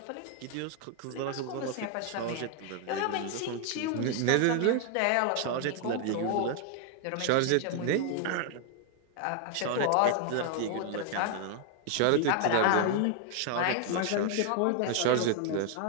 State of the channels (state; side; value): different; both; correlation 0.00